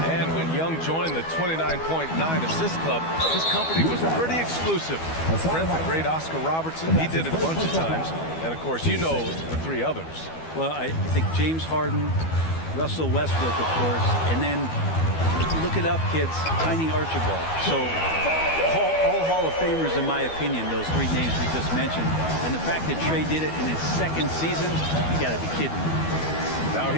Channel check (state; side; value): late; right; 12 ms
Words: And when Young joined the 29.9 assist club, his company was pretty exclusive. Friend the great Oscar Robertson, he did it a bunch of times. And of course, you know the 3 others. Well, I think James Harden, Russell Westbrook, of course, and then look it up, kids, Tiny Archibald. So all Hall of Famers, in my opinion, those 3 names we just mentioned. And the fact that Trae did it in his 2nd season, you got to be kidding me. Now